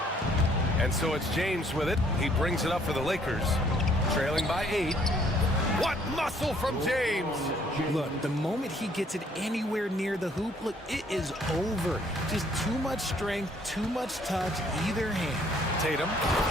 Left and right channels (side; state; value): both; normal; correlation 0.63